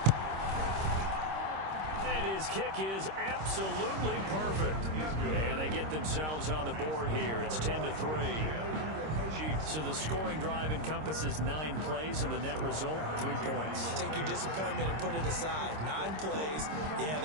And his kick is absolutely perfect. And they get themselves on the board here. It's 10-3. So the scoring drive encompasses 9 plays, and the net result, 3 points. Take your disappointment and put it aside. 9 plays. Yeah,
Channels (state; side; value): late; left; 26 ms